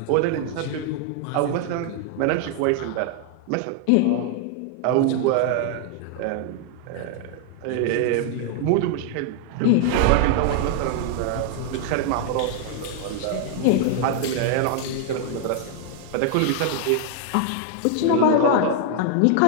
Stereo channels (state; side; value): different; both; correlation 0.00